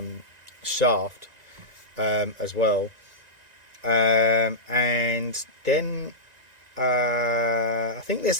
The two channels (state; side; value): late; left; 1.9 ms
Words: shaft as well, and then I think there's